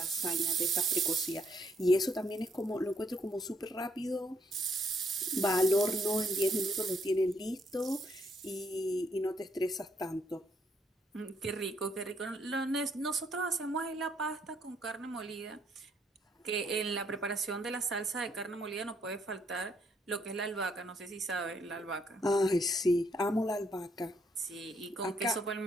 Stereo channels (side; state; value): both; normal; correlation 0.71